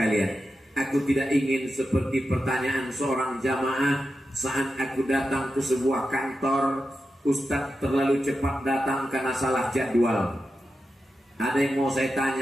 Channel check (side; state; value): both; normal; correlation 0.90